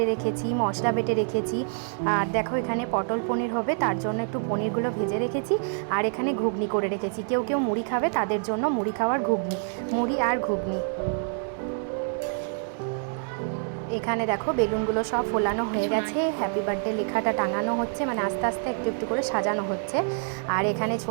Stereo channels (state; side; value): silent; left; 60 dB below the other